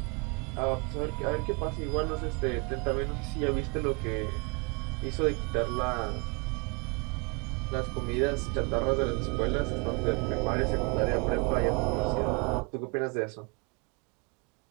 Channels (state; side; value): quieter; left; 31.6 dB